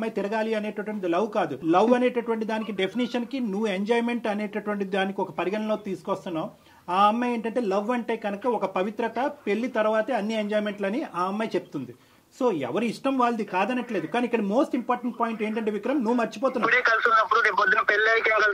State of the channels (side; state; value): both; identical; correlation 1.00